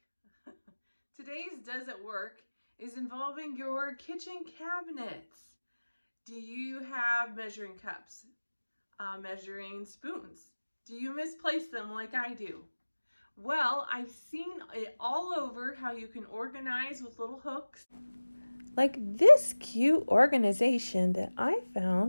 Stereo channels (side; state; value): both; inverted; correlation -1.00